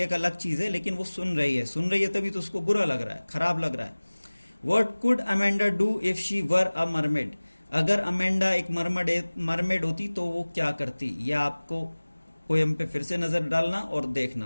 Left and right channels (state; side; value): inverted; both; correlation -1.00